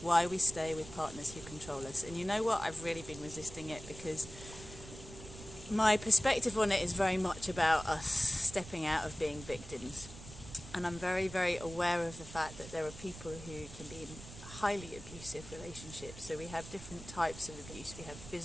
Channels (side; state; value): right; noise; rumble, 14 dB below the sound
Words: we stay with partners who control us. And you know what? I've really been resisting it because my perspective on it is very much about us stepping out of being victims. And I'm very, very aware of the fact that there are people who can be in highly abusive relationships. So we have different types of abuse. We have